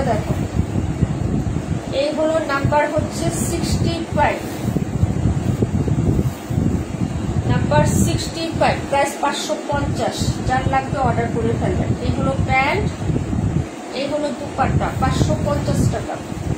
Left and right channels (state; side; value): identical; both; correlation 1.00